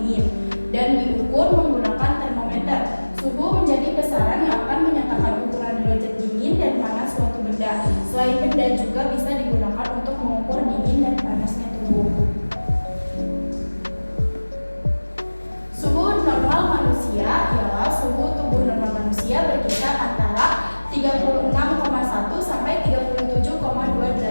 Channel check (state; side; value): inverted; both; correlation -1.00